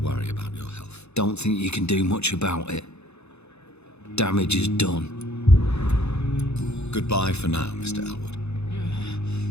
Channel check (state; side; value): late; right; 0.81 ms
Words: about your health. Don't think you can do much about it. Damage is done. Goodbye for now, Mr. Elwood.